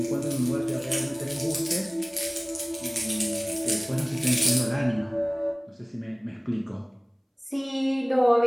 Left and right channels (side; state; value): both; identical; correlation 1.00